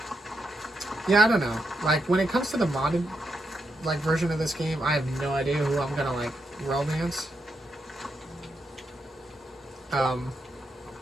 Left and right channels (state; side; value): normal; both; correlation 0.82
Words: Yeah, I don't know. Like, when it comes to the modded, like, version of this game, I have no idea who I'm gonna, like, romance. I